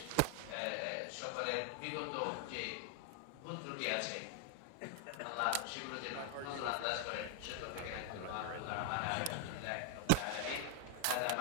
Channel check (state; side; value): different; both; correlation 0.00